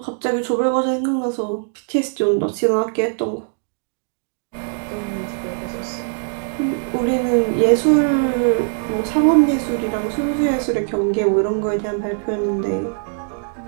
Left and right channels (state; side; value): silent; left; 65 dB below the other